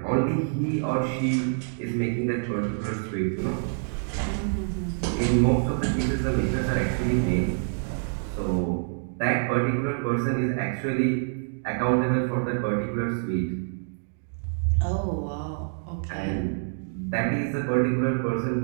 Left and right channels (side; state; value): left; silent; digital silence